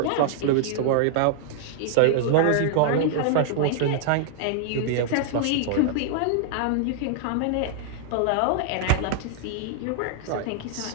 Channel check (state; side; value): different; both; correlation -0.01